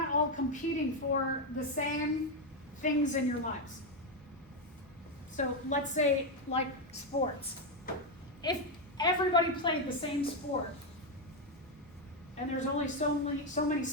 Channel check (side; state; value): both; normal; correlation 0.06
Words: all competing for the same things in your lives. So let's say like sports. If everybody played the same sport and there's only so many